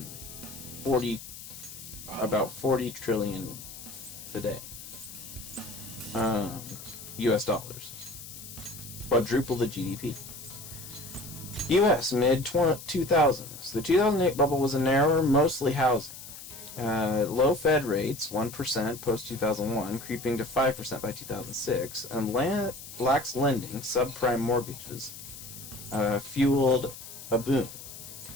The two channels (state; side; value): noise; left; hiss, 13 dB below the sound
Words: About 40 trillion today. US dollars. Quadruple the GDP. US mid-2000s. The 2008 bubble was a narrower, mostly housing. Low Fed rates, 1% post-2001, creeping to 5% by 2006, and lax lending, subprime mortgages, fueled a boom.